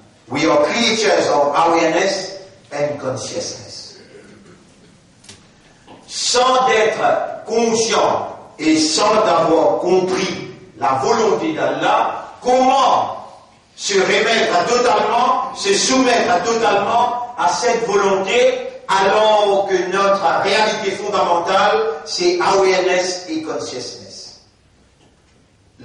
We are creatures of awareness and consciousness. Sans être conscient et sans avoir compris la volonté d'Allah, comment se remettre totalement, se soumettre totalement à cette volonté alors que notre réalité fondamentale, c'est awareness et consciousness.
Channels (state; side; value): identical; both; correlation 1.00